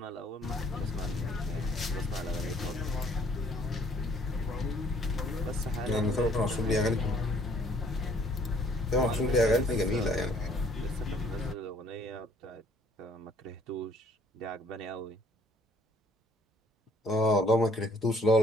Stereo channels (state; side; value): normal; both; correlation 0.61